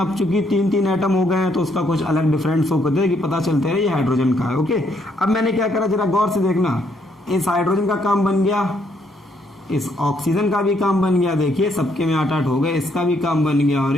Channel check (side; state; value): both; normal; correlation 0.71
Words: चूंकि 3 एटम हो गए हैं तो उसका कुछ अलग डिफरेंस हो करते कि पता चलते है ये हाइड्रोजन का है। ओके, अब मैंने क्या करा, जरा गौर से देखना। इस हाइड्रोजन का काम बन गया, इस ऑक्सीजन का भी काम बन गया। देखिए सबके में 8-8 हो गए, इसका भी काम बन गया और